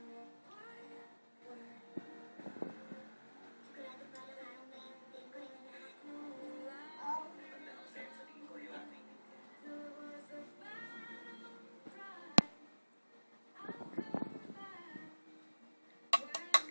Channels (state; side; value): inverted; both; correlation -1.00